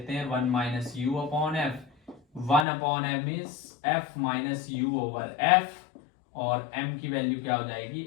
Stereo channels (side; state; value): right; drops out; at 2.7 s